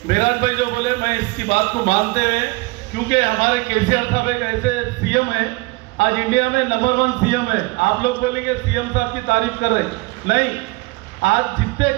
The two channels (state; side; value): quieter; left; 24.1 dB